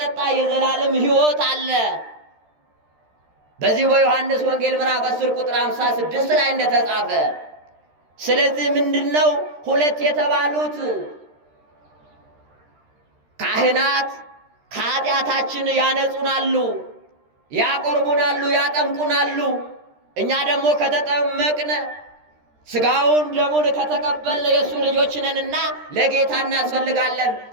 የዘላለም ሕይወት አለ። በዚህ በዮሐንስ ወንጌል ምዕራፍ 10 ቁጥር 56 ላይ እንደተጻፈ። ስለዚህ ምንድነው 2 የተባሉት ካህናት ከኃጢአታችን ያነጹናሉ፣ ያቆርቡናሉ፣ ያጠምቁናሉ። እኛ ደግሞ ከተጠመቅነ ሥጋውን ደሙን ከተቀበልን የእሱ ልጆች ነንና ለጌታ እናስፈልጋለን።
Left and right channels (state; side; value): late; left; 13 ms